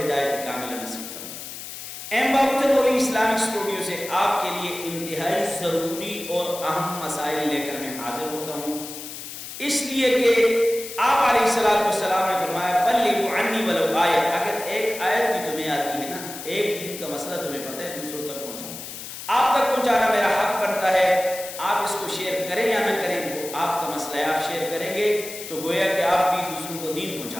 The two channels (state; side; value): noise; left; hiss, 10 dB below the sound